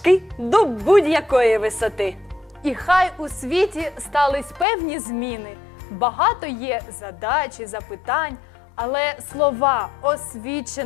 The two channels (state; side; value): drops out; right; at 4.7 s